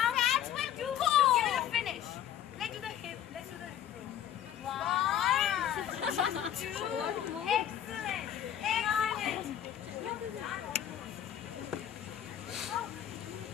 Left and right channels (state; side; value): quieter; right; 10.4 dB